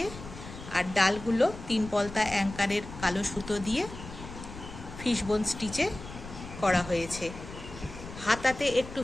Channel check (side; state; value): left; noise; rumble, 13 dB below the sound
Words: আর ডালগুলো 3 পলতা অ্যাঙ্কারের কালো সুতো দিয়ে ফিশবোন স্টিচে করা হয়েছে। হাতাতে একটু